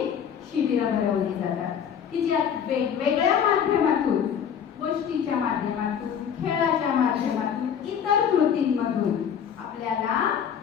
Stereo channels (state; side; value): quieter; right; 8.1 dB